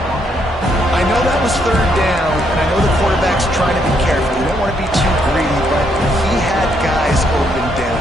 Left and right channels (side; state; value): both; normal; correlation 0.74